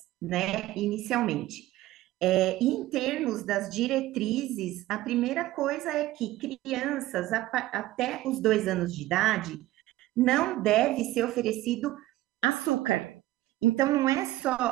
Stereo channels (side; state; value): left; quieter; 16.2 dB